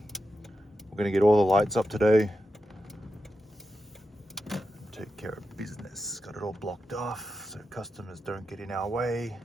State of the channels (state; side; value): normal; both; correlation 0.89